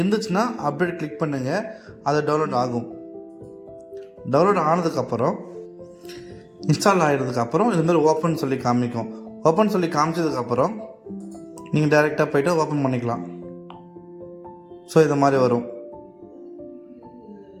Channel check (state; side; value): identical; both; correlation 1.00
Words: அப்டேட் கிளிக் பண்ணுங்கள், அது டவுன்லோட் ஆகும். டவுன்லோட் ஆனதுக்கப்புறம் இன்ஸ்டால் ஆகிடுறதுக்கப்புறம் இதுமாதிரி ஓப்பன் சொல்லி காமிக்கும். ஓப்பன் சொல்லி காமிச்சதுக்கப்புறம் நீங்கள் டைரெக்டாக போய்ட்டு ஓப்பன் பண்ணிக்கலாம். ஸோ இது மாதிரி வரும்.